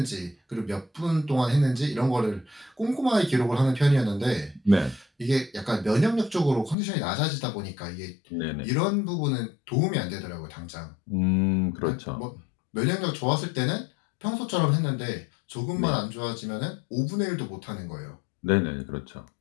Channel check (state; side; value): drops out; right; at 6.8 s